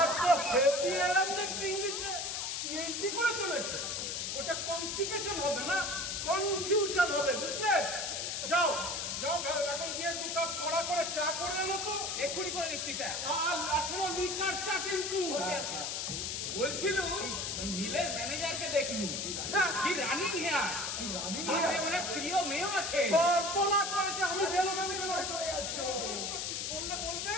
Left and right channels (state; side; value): noise; left; hiss, 2 dB below the sound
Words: তো হেভি এলাম দেখছি ইংলিশে। পিএইচডি করেছো নাকি? ওটা কনস্টিপেশন হবে না, কনফিউশন হবে, বুঝলে? যাও এখন গিয়ে 2 কাপ কড়া করে চা করে আনো তো। এক্ষুনি করে দিচ্ছি স্যার। আর শোনো, লিকার চা কিন্তু। বলছিল মিলের ম্যানেজারকে দেখলু, কি রানিং হেয়ার, সাথে ওনার স্ত্রীও মেয়েও আছে। সর্বনাশ করেছে। আমি বেলো চলে যাচ্ছি। বলবে